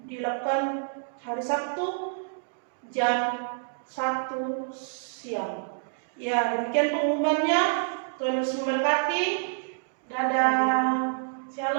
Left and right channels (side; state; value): left; silent; digital silence